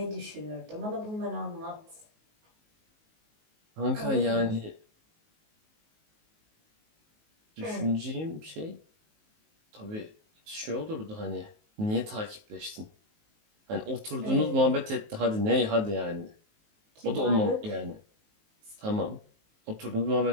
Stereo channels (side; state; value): left; late; 19 ms